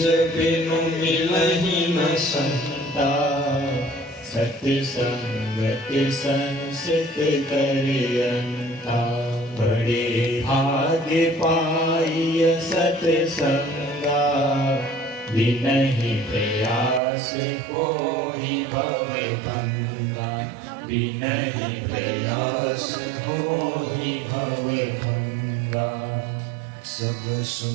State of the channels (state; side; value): drops out; left; at 17.0 s